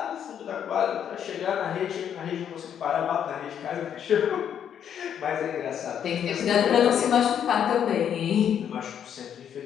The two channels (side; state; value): right; quieter; 8.9 dB